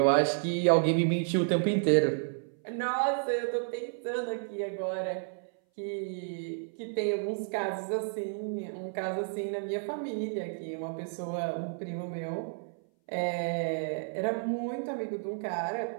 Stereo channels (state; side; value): silent; left; 57 dB below the other